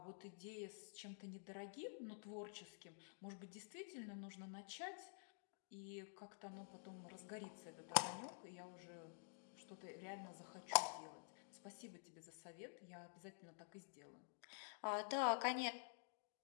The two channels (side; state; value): right; silent; digital silence